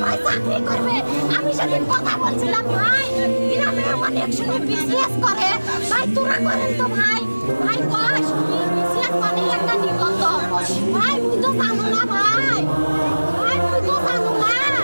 ভাই চাকরি করবে। আমি সেদিন কথা বলছিলাম, ভাই গ্রামে অনেক সময় বিসিএস করে, ভাই তোরা করেন তো ভাই। ভাই কস বিসিএস মানে একটা নিবন্ধন। ভাই তুই তো জানো না ভাই, ভাই তুই তো জানো না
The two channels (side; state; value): both; inverted; correlation -1.00